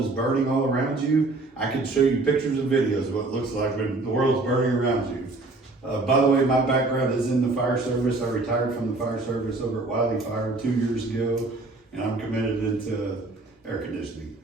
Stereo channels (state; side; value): quieter; left; 3.2 dB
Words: is burning all around you. I can show you pictures and videos of what it looks like when the world's burning around you. By the way, my background is in the fire service. I retired from the fire service over at Wiley Fire 2 years ago, and I'm committed into air conditioning.